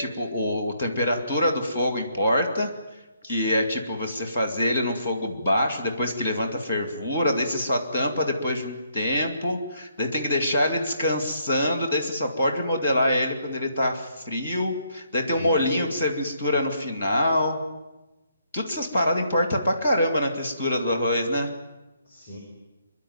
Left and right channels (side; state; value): both; inverted; correlation -0.71